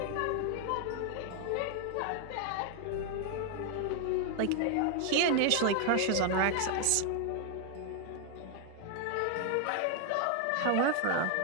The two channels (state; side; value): different; both; correlation 0.00